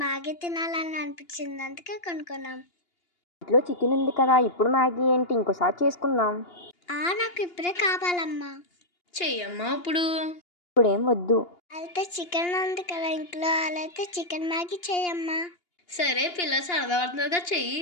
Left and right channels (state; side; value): late; right; 2.8 ms